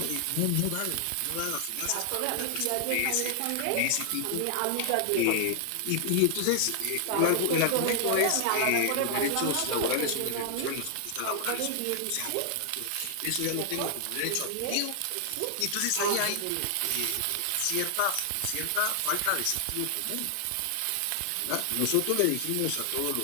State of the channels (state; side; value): different; both; correlation 0.00